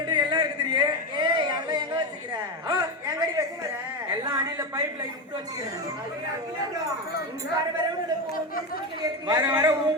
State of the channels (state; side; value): normal; both; correlation 0.15